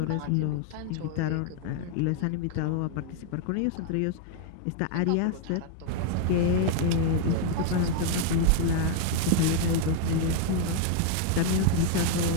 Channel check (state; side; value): different; both; correlation 0.00